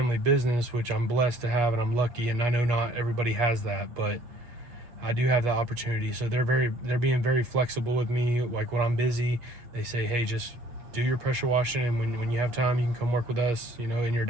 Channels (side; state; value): left; late; 8.4 ms